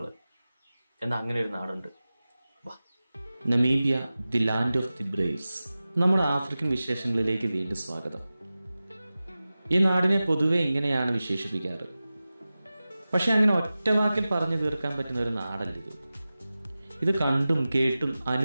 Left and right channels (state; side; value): inverted; both; correlation -0.96